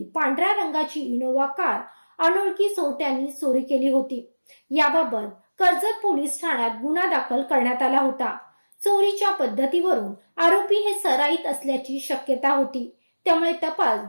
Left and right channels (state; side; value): inverted; both; correlation -1.00